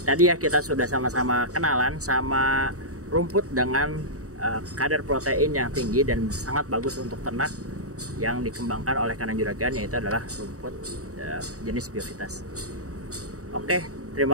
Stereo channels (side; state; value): left; late; 0.66 ms